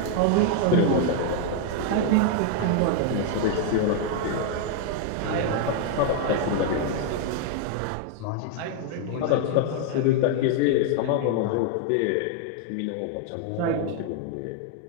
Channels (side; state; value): both; different; correlation 0.00